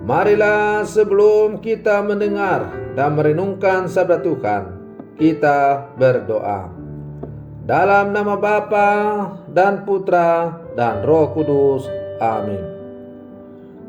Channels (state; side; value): identical; both; correlation 1.00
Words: Marilah sebelum kita mendengar dan merenungkan sabda Tuhan, kita berdoa. Dalam nama Bapa dan Putra dan Roh Kudus. Amin.